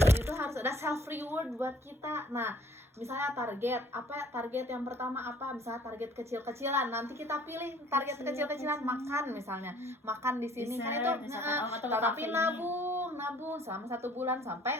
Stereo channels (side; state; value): both; normal; correlation 0.56